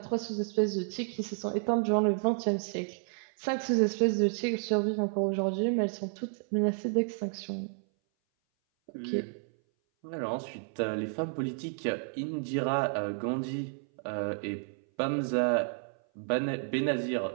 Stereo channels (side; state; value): left; silent; 57 dB below the other